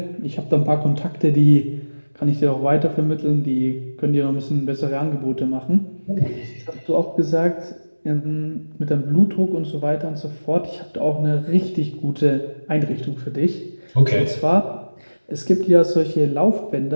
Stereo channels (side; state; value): both; inverted; correlation -1.00